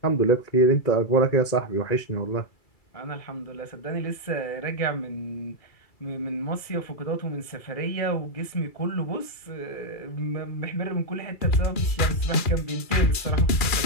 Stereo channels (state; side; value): late; right; 2.3 ms